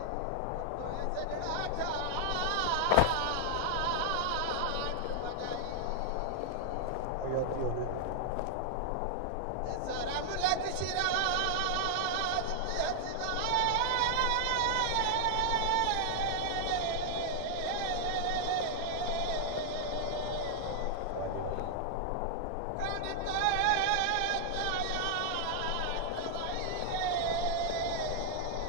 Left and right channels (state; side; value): different; both; correlation -0.01